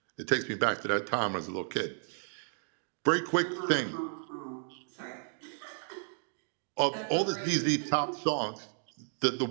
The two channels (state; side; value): silent; left; digital silence